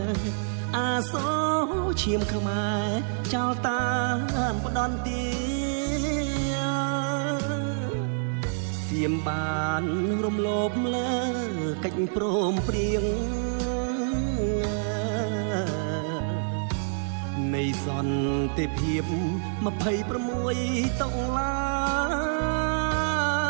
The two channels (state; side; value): silent; left; digital silence